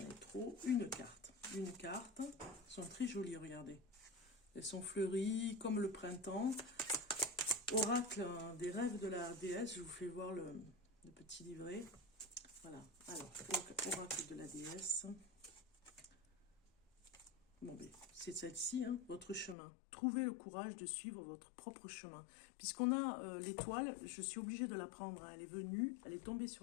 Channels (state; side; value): drops out; right; at 19.6 s